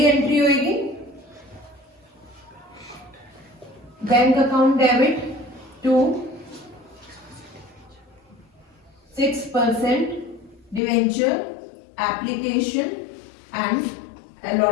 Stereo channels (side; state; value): right; drops out; at 10.8 s